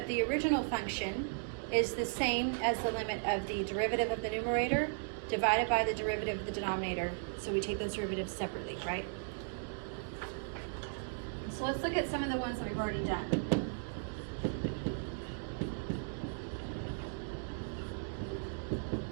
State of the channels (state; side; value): silent; left; digital silence